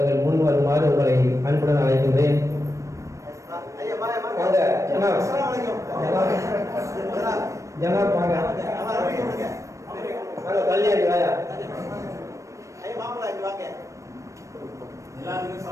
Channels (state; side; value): late; left; 0.15 ms